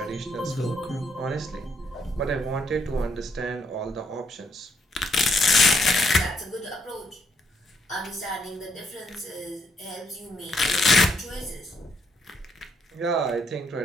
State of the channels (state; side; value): normal; both; correlation 0.73